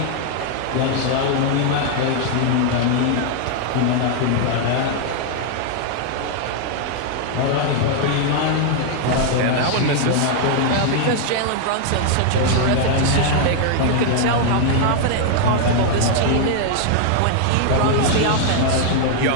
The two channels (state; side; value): different; both; correlation 0.00